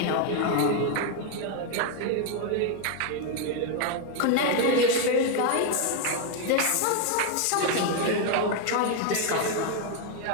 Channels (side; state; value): both; different; correlation 0.01